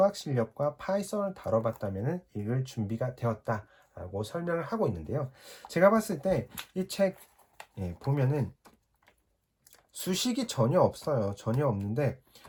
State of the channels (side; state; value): both; identical; correlation 1.00